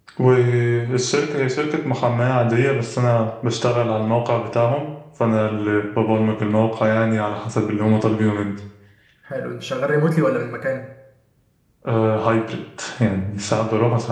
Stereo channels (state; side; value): identical; both; correlation 1.00